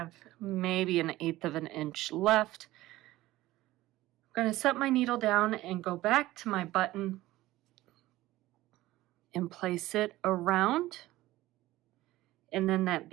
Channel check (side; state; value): left; quieter; 16.8 dB